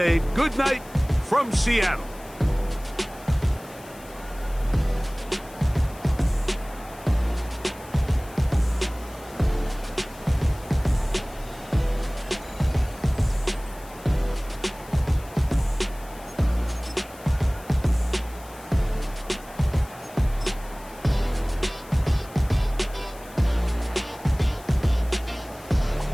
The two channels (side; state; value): left; noise; hiss, 21 dB below the sound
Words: good night from Seattle.